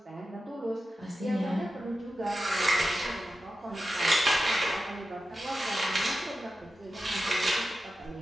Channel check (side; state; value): both; normal; correlation 0.92